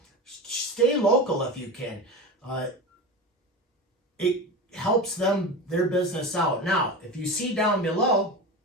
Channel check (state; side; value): normal; both; correlation 0.26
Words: stay local if you can. It helps them, their business out. Now, if you see down below,